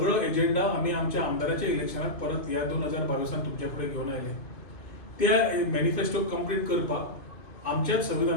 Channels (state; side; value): late; right; 2.6 ms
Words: एजेंडा आमी आमच्या आमदाराच्या इलेक्शनाक परत ह्या 2022 तुमच्या फुडें घेवन आयले. त्या मॅनिफेस्टो कंप्लीट करपाक आमच्याच